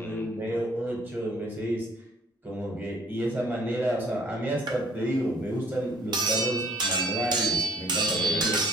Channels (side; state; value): both; normal; correlation 0.57